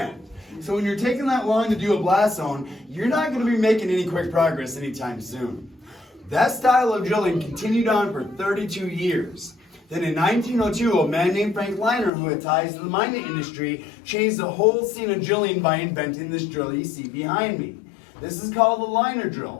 So when you're taking that long to do a blast zone, you're not going to be making any quick progress anytime soon. That style of drilling continued on for 32 years. Then in 1902, a man named Frank Liner, who had ties to the mining industry, changed the whole scene of drilling by inventing this drill you see behind me. This is called the liner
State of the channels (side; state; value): right; drops out; at 12.1 s